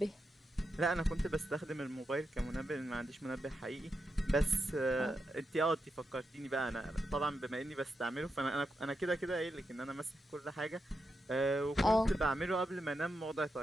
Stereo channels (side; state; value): both; normal; correlation 0.86